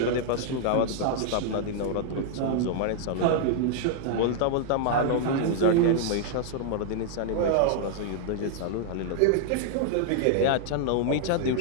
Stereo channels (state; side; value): different; both; correlation -0.01